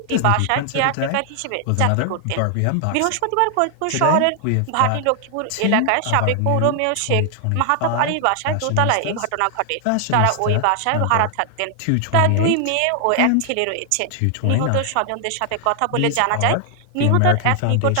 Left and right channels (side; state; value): both; different; correlation 0.00